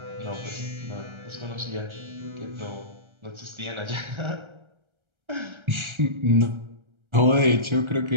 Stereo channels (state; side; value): late; left; 1.3 ms